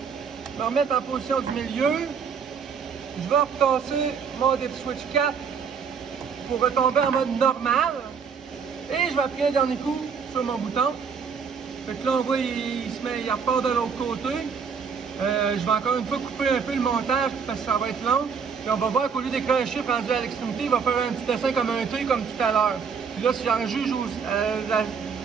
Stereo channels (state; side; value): quieter; left; 6.2 dB